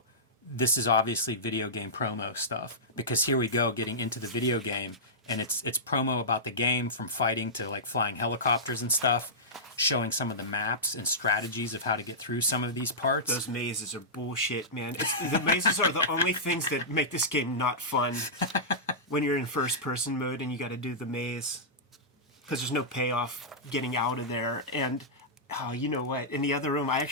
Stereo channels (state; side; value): normal; both; correlation -0.14